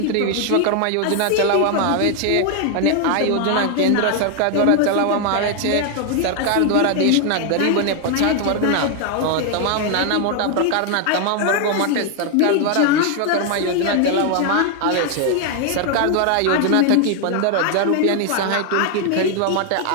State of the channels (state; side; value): different; both; correlation 0.00